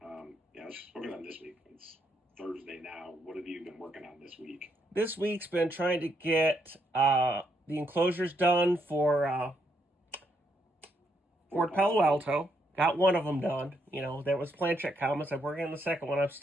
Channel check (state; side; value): normal; both; correlation 0.76